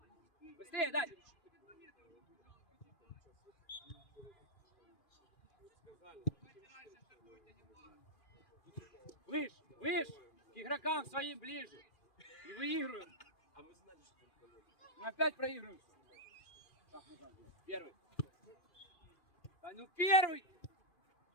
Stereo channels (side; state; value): right; late; 2.4 ms